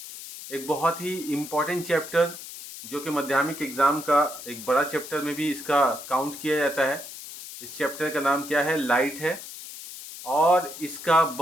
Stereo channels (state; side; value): noise; left; hiss, 12 dB below the sound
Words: एक बहुत ही इम्पोर्टेंट चैप्टर जो कि माध्यमिक एग्ज़ाम का एक बड़ा चैप्टर में भी इसका काउंट किया जाता है। इस चैप्टर का नाम क्या है? लाइट है। और इसका